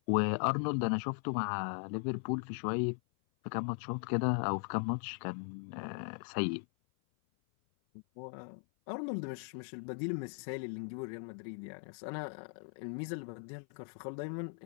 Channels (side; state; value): right; silent; 52 dB below the other